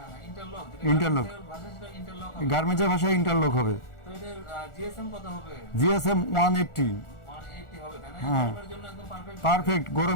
ইন্টারলক? ইন্টারলক। ভাষা সেটা ইন্টারলক। গার্মেন্টসের ভাষায় ইন্টারলক হবে। তো এটার জিএসএম কত হবে? জিএসএম 180। 180 হবে তাই না? হ্যাঁ। গরমের জন্য একদম পারফেক্ট। পারফেক্ট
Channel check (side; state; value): right; late; 1.4 ms